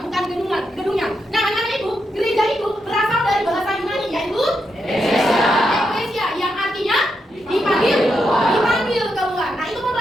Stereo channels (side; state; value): both; normal; correlation 0.83